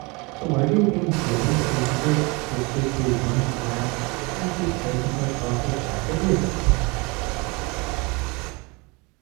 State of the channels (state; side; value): quieter; left; 27.5 dB